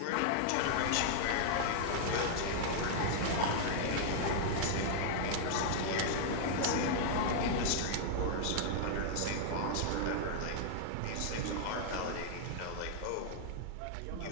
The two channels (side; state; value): both; different; correlation -0.01